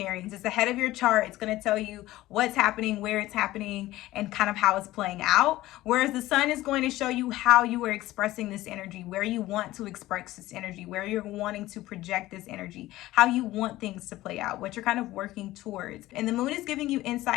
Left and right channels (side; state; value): right; quieter; 16.7 dB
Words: It's the head of your chart. It's going to tell you what's happening, where it's happening, and kind of how it's playing out. Whereas the sun is going to show you how you are expressing this energy, where you want to express this energy, where you're wanting to project this energy, how you want things to play out, what you're kind of working towards. And the moon is giving you